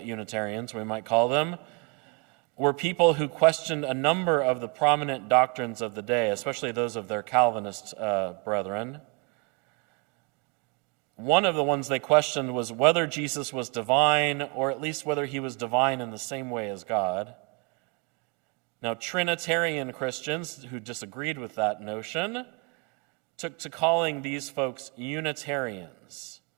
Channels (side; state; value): left; quieter; 30.5 dB